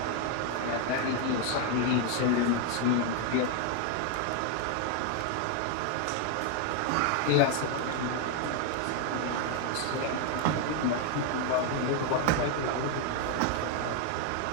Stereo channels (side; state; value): both; different; correlation 0.01